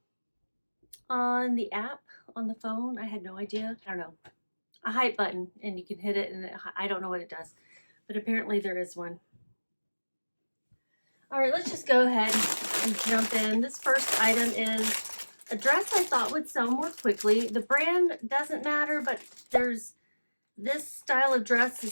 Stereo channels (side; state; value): both; inverted; correlation -1.00